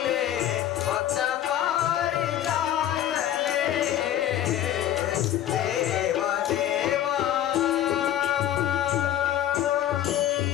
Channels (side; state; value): right; quieter; 11.5 dB